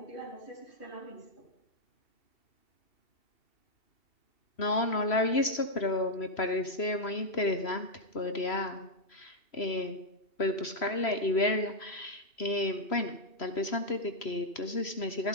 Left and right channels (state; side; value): late; right; 3.0 ms